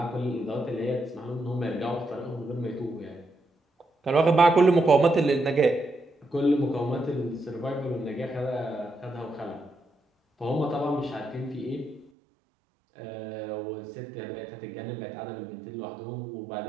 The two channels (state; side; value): drops out; left; at 12.1 s